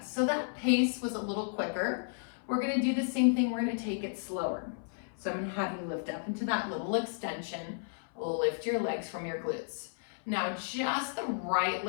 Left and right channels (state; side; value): silent; right; 56 dB below the other